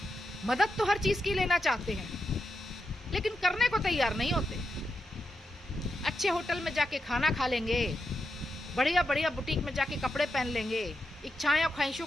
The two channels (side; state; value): both; normal; correlation 0.86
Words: मदद तो हर चीज की लेना चाहते हैं, लेकिन करने को तैयार नहीं होते। अच्छे होटल में जाके खाना खा लेंगे, बढ़िया बढ़िया बुटीक में जाके कपड़े पहन लेंगे, इच्छाएं और ख्वाहिशों